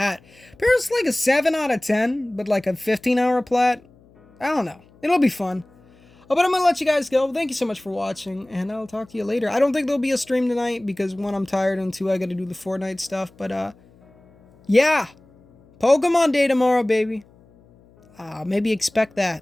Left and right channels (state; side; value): noise; left; hum, 29 dB below the sound